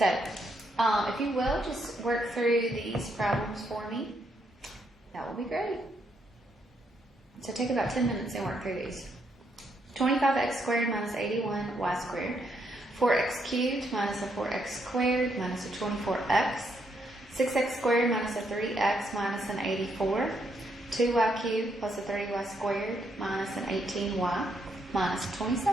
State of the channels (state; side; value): normal; both; correlation 0.76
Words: if you will, just work through these problems for me. That will be great. So take about 10 minutes and work through these. 25x squared minus 81y squared. 4x cubed minus a 4x squared minus a 24x. 6x squared minus a 3x minus an 84. 2y cubed plus a 30y squared minus an 18y minus